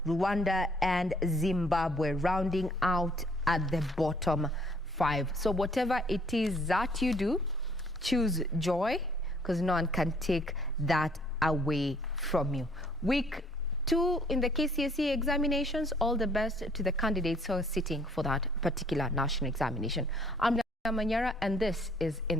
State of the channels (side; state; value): both; normal; correlation 0.61